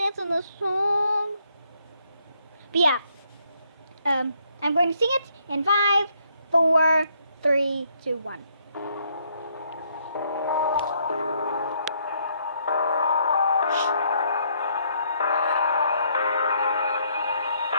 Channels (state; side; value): inverted; both; correlation -0.71